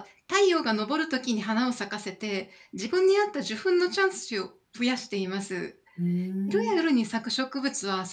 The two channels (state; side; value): identical; both; correlation 1.00